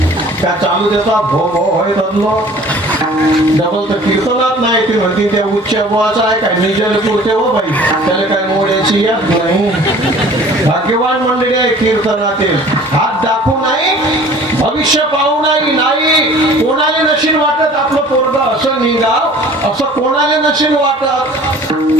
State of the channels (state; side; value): normal; both; correlation 0.48